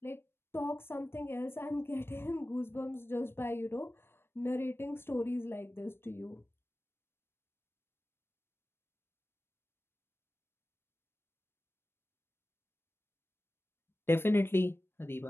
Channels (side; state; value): right; late; 0.11 ms